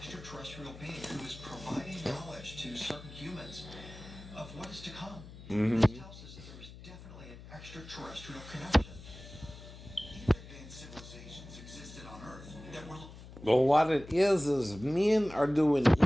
being who is providing knowledge to certain humans of what is to come. This tells us that there is definitely an extraterrestrial connection. Even advanced civilizations existed on Earth that were. Well, what it is men are doing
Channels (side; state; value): left; noise; hum, 16 dB below the sound